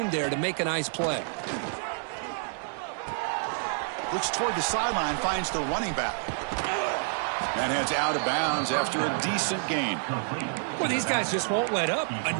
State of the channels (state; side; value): silent; left; digital silence